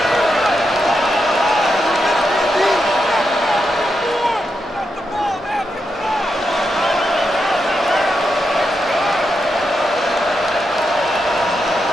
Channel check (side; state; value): both; normal; correlation 0.85